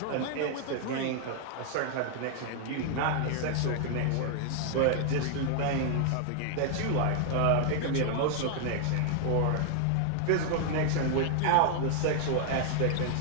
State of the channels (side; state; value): both; different; correlation 0.00